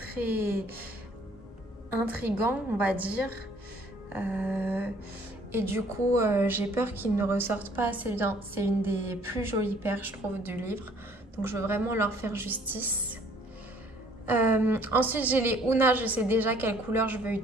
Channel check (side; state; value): both; normal; correlation 0.59